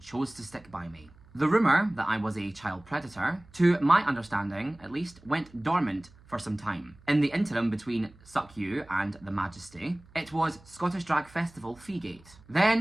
chose to stick by me. The rumour that I was a child predator, to my understanding at least, went dormant for some time. In the interim between Suck You and The Majesty, it was Scottish Drag Festival Feegate,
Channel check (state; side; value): noise; right; hum, 25 dB below the sound